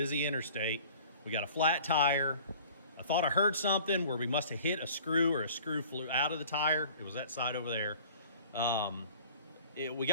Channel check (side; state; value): both; inverted; correlation -0.48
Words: interstate. We got a flat tire. I thought I heard something where we must have hit a screw, or a screw flew out of the tire. It was that side over there. We